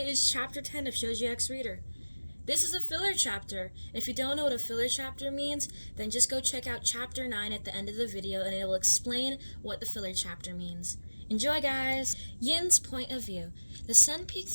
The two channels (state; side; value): inverted; both; correlation -1.00